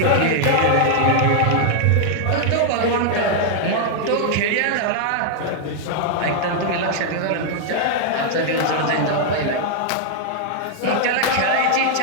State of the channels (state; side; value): different; both; correlation 0.00